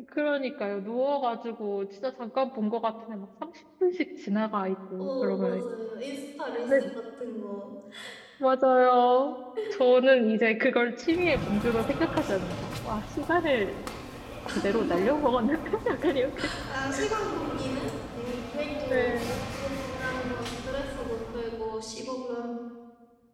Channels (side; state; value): both; identical; correlation 1.00